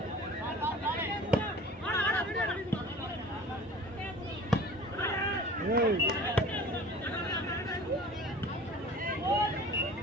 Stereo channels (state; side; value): normal; both; correlation 0.43